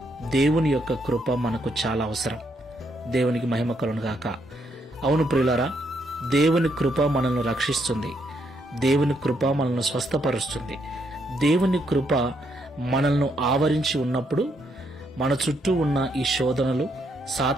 దేవుని యొక్క కృప మనకు చాలా అవసరం. దేవునికి మహిమ కలుగును గాక. అవును ప్రియులారా, దేవుని కృప మనల్ని రక్షిస్తుంది. దేవుని కృప మనల్ని స్వస్థపరుస్తుంది. దేవుని కృప మనల్ని ఆవరించి ఉన్నప్పుడు మన చుట్టూ ఉన్న ఈ శోధనలు,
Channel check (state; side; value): normal; both; correlation 0.75